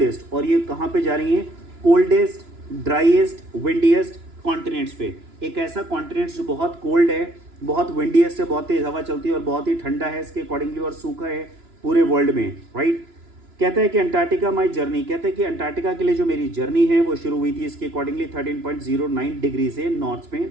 और ये कहाँ पे जा रही हैं? कोल्डेस्ट, ड्राइएस्ट, विंडिएस्ट कॉन्टिनेंट्स पे। एक ऐसा कॉन्टिनेंट्स जो बहुत कोल्ड है, बहुत विंडिएस्ट है, बहुत तेज हवा चलती है और बहुत ही ठंडा है इसके अकॉर्डिंगली और सूखा है पूरे वर्ल्ड में। राइट, कहता है कि अंटार्कटिका माई जर्नी, कहते हैं कि अंटार्कटिका के लिए जो मेरी जर्नी है वो शुरू हुई थी इसके अकॉर्डिंगली 13.09 डिग्री से नॉर्थ में,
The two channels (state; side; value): late; left; 2.9 ms